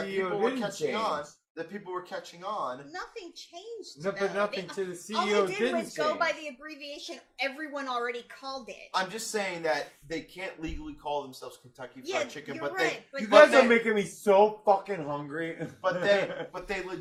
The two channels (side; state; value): both; identical; correlation 1.00